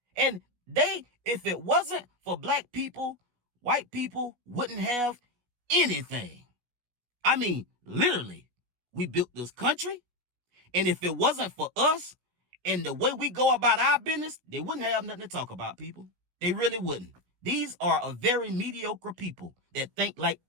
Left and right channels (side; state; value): left; late; 16 ms